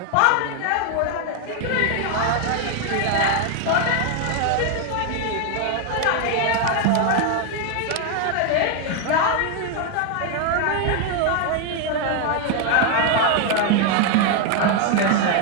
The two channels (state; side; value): different; both; correlation 0.01